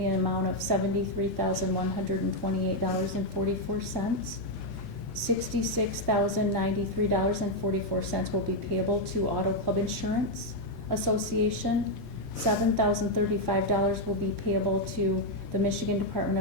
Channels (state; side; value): normal; both; correlation 0.00